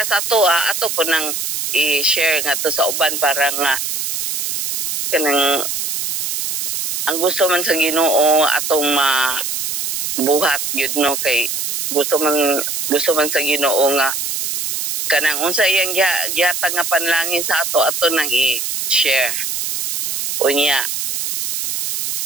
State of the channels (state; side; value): noise; right; hiss, 3 dB below the sound